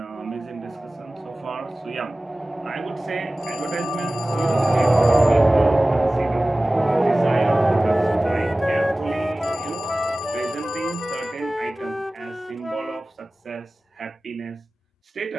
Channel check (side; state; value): both; normal; correlation 0.97